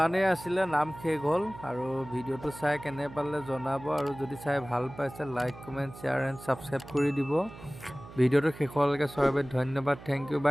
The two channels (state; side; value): noise; right; hum, 16 dB below the sound